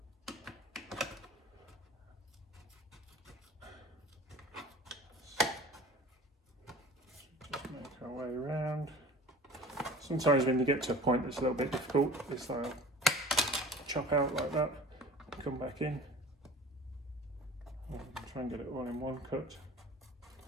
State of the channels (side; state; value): both; normal; correlation 0.42